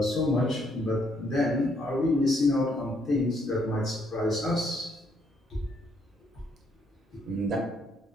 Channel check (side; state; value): both; normal; correlation 0.71